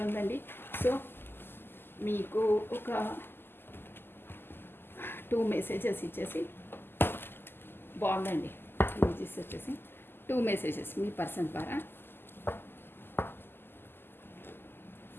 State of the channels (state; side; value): late; right; 0.10 ms